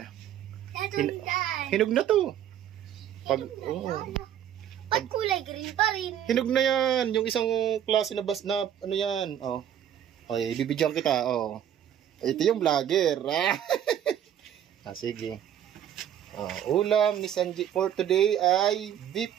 Hinog na to. Ba't kulay green pa rin? Hinog na yan. Yung isang klase na ano yan. Bibidyoan kita. Ito yung vlogger. Sige. Ulam ni Sanji for today ay beef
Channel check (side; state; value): left; quieter; 10.2 dB